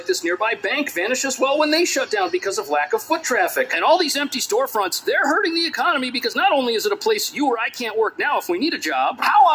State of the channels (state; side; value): identical; both; correlation 1.00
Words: this nearby bank vanish as well when they shut down because of lack of foot traffic. And all these empty storefronts, they're hurting the economy because not only is it a place you or I can't work now if we need a job, how